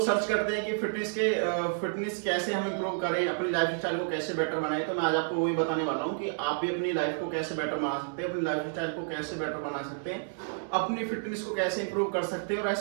सर्च करते हैं कि फिटनेस कैसे हम इंप्रूव करें, अपनी लाइफ स्टाइल को कैसे बेटर बनाएं। तो मैं आज आपको वही बताने वाला हूँ कि आप भी अपनी लाइफ को कैसे बेटर बना सकते हैं, अपनी लाइफ स्टाइल को कैसे बेटर बना सकते हैं, अपनी फिटनेस को कैसे इंप्रूव कर सकते हैं और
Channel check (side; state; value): left; silent; 58 dB below the other